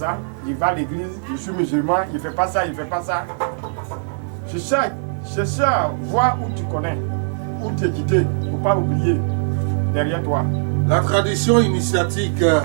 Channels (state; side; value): silent; left; 59 dB below the other